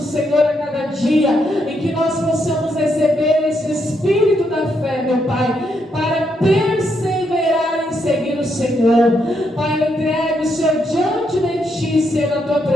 a cada dia, em que nós possamos receber esse espírito da fé, meu Pai, para perseverar em seguir o Senhor. Pai, eu entrego o Senhor diante de Ti, Senhor, na Tua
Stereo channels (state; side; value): normal; both; correlation 0.78